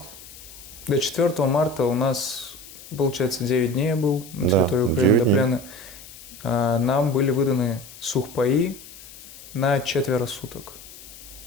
До 4 марта у нас получается, 9 дней я был на Да, территории Украины 9 до дней. плена. Нам были выданы сухпаи на 4 суток.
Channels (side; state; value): left; noise; hiss, 18 dB below the sound